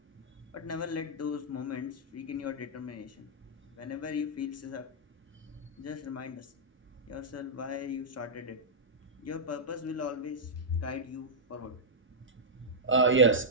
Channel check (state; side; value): normal; both; correlation -0.09